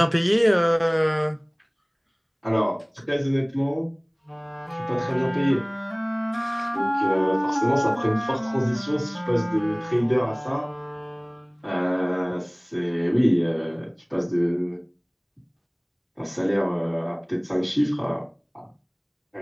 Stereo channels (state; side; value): identical; both; correlation 1.00